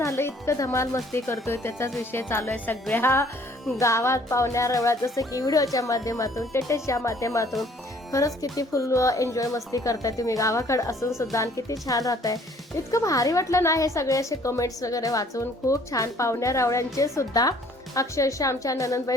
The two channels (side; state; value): both; normal; correlation 0.58